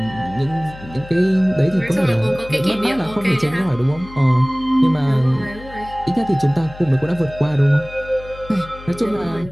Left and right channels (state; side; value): noise; left; hum, 17 dB below the sound